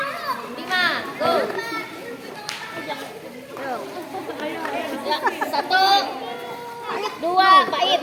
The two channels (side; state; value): both; identical; correlation 1.00